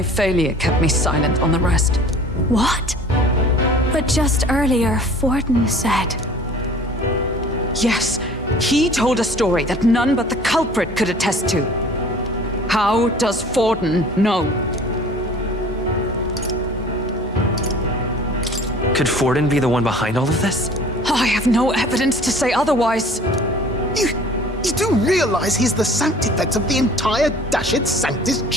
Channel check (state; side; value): normal; both; correlation 0.47